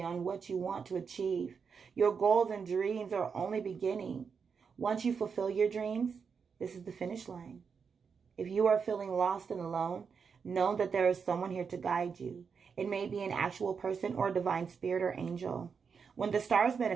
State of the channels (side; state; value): left; quieter; 6.0 dB